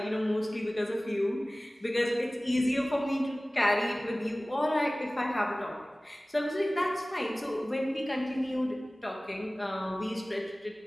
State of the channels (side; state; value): both; normal; correlation 0.98